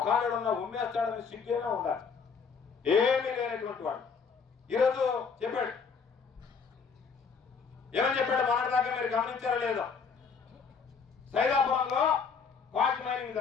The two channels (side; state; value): right; quieter; 5.7 dB